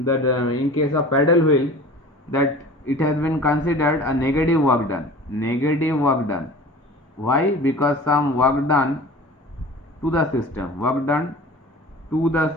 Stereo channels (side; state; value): both; normal; correlation 0.40